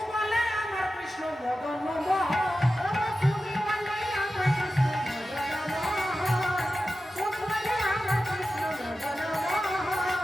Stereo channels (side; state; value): both; normal; correlation 0.93